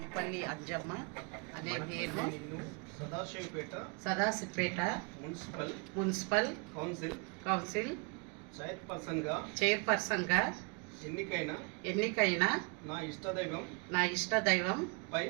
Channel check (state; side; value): quieter; left; 34.2 dB